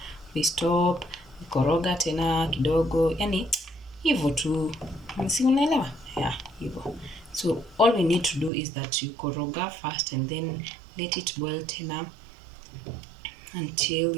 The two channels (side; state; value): left; drops out; at 8.5 s